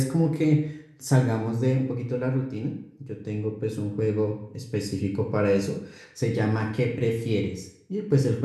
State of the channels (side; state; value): both; identical; correlation 1.00